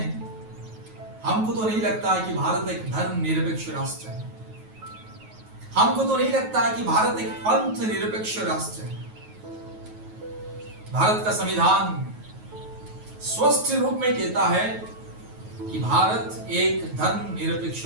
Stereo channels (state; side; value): late; left; 9.3 ms